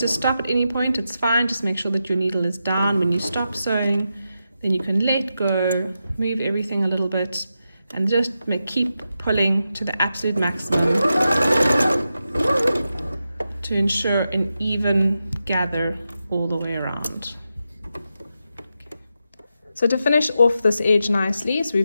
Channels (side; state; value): both; inverted; correlation -0.88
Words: stop at any point, it's fine. Just make sure that your needle is down when you stop sewing. Then you can let go, move everything a little bit, and just keep pulling to the absolute maximum to ensure an even gather all the way around. So to finish off this edge nicely, so